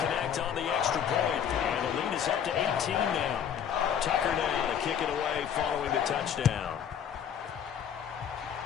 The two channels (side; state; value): right; quieter; 8.6 dB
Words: on the extra point. And the lead is up to 18 now. Tucker now to kick it away following the touchdown.